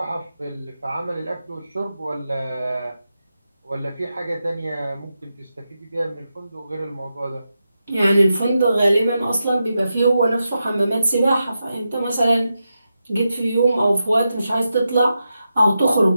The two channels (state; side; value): inverted; both; correlation -0.89